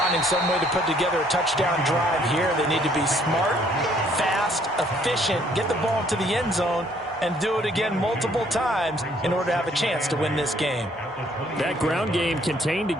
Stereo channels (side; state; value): both; normal; correlation 0.64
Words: some way to put together a touchdown drive here. They need to be smart, fast, efficient, get the ball into the end zone, and do it again multiple times in order to have a chance to win this game. That ground game contained